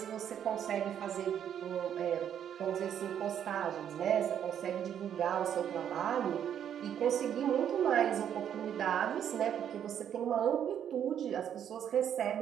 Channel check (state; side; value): quieter; left; 9.3 dB